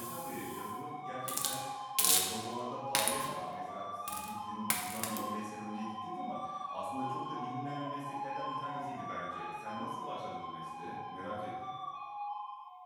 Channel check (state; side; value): identical; both; correlation 1.00